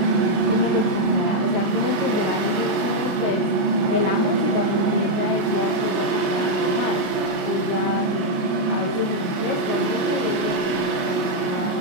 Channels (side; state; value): left; late; 33 ms